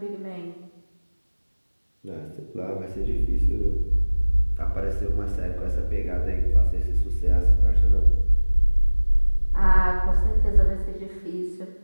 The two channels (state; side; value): inverted; both; correlation -1.00